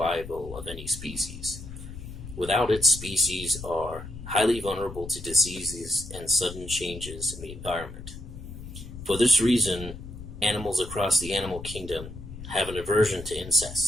of any species. Without it, species are highly vulnerable to diseases and sudden changes in the environment. For this reason, animals across the animal kingdom have an aversion to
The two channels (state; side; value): noise; left; rumble, 12 dB below the sound